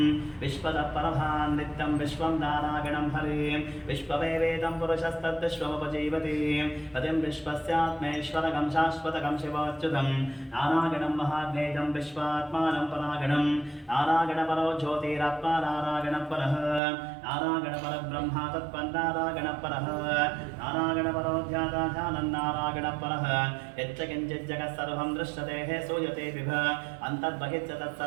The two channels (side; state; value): left; drops out; at 16.8 s